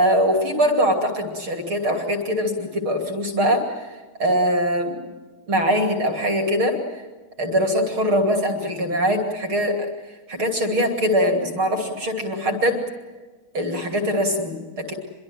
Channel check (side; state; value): left; late; 6.5 ms